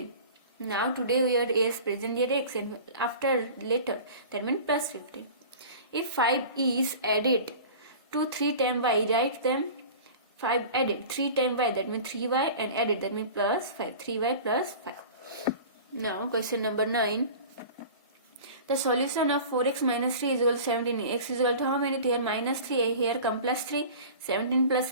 Now today we are as present year x and after later, that means plus 15. If 5 is added to 3 times y, write them. 5 added 3 times y, that means 3y, and added, that means plus 5. 3y plus 5. Now question number 9. The solution of 4x minus 3 is equal to 17. X is equal to how many? Here minus 3, here come plus 3. 17 plus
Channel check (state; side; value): inverted; both; correlation -0.39